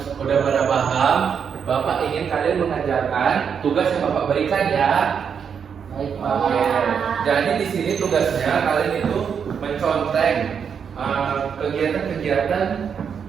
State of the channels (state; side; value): quieter; left; 7.1 dB